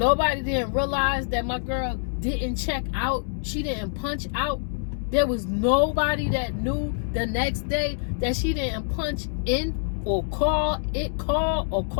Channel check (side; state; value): right; silent; 61 dB below the other